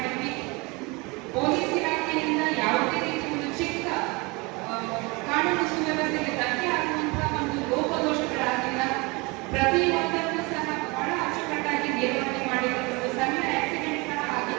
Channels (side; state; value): left; quieter; 26.4 dB